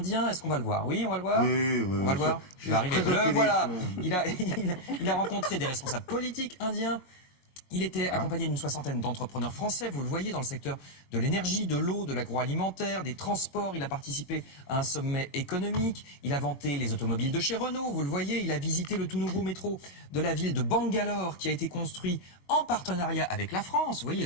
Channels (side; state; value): right; late; 21 ms